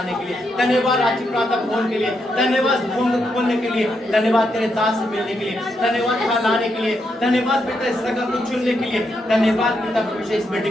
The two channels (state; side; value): normal; both; correlation 0.80